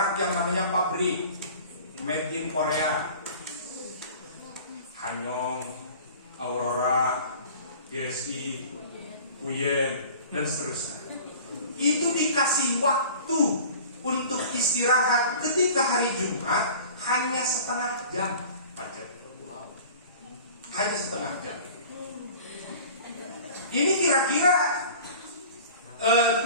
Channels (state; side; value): inverted; both; correlation -0.43